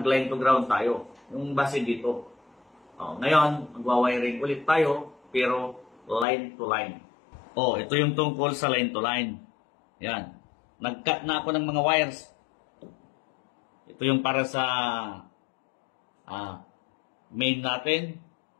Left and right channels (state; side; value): drops out; right; at 6.2 s